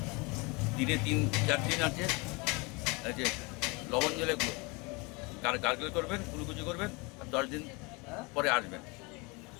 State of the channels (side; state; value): right; quieter; 27.8 dB